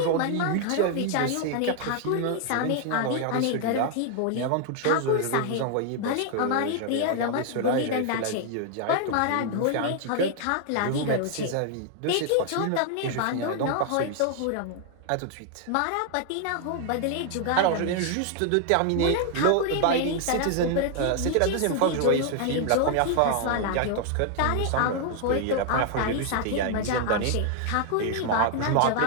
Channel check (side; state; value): both; different; correlation 0.00